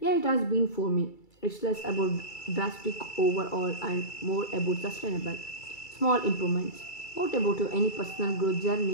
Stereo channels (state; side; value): late; right; 2.3 ms